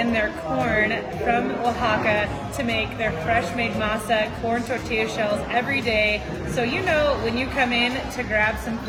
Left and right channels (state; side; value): identical; both; correlation 1.00